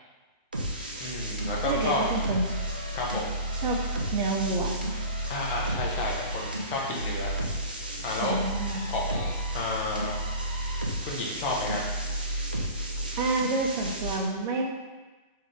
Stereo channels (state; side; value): inverted; both; correlation -0.38